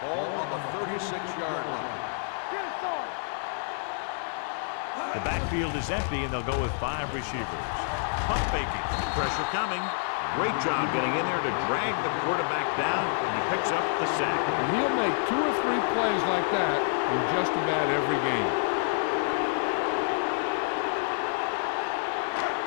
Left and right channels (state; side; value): silent; right; digital silence